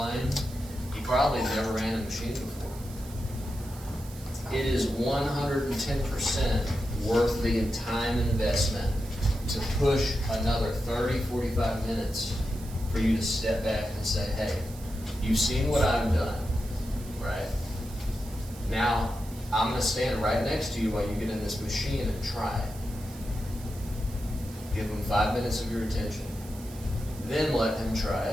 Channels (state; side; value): noise; right; hiss, 18 dB below the sound